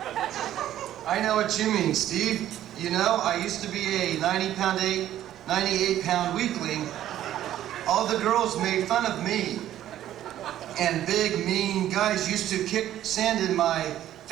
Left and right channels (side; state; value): left; quieter; 12.2 dB